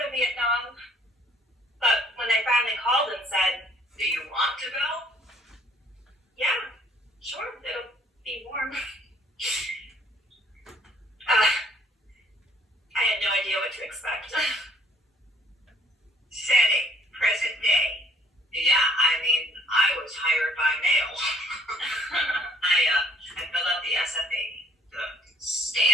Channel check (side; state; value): both; normal; correlation 0.60